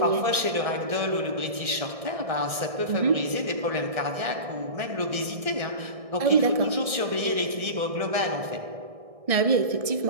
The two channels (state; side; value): late; left; 1.6 ms